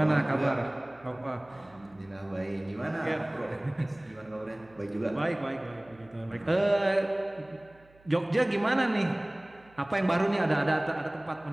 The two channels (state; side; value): noise; right; hum, 28 dB below the sound